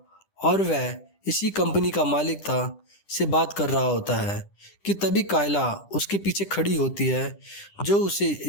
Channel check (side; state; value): right; late; 10 ms